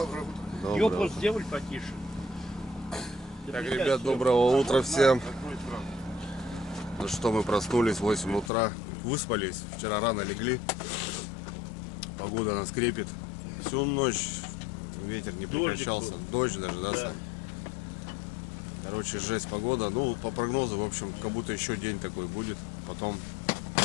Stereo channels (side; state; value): right; drops out; at 8.5 s